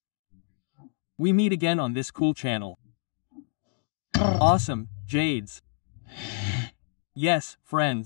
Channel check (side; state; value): right; silent; digital silence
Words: We meet again on this cool channel. Awesome, Jades. Yes,